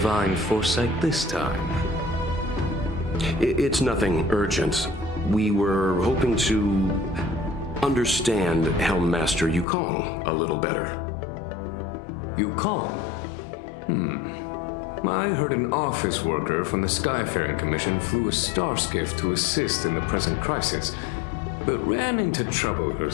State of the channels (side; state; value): right; drops out; at 9.7 s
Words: foresight this time? It's nothing urgent. We were hoping to understand Helm Master Yukong a little better. Yukong? I heard an office worker from the Skyfaring Commission flew a star skiff to assist in the present crisis, but ran into trouble